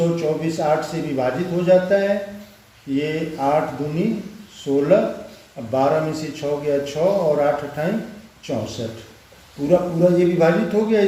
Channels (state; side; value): identical; both; correlation 1.00